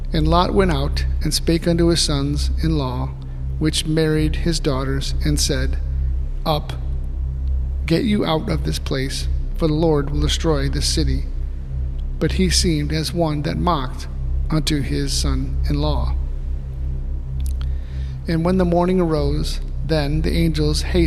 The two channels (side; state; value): both; identical; correlation 1.00